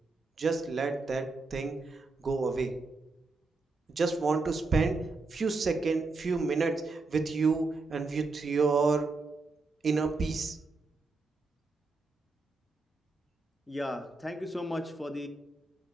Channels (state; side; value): quieter; left; 3.7 dB